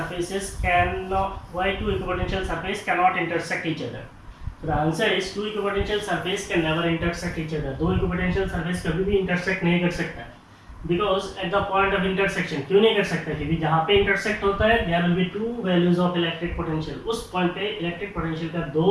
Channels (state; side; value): identical; both; correlation 1.00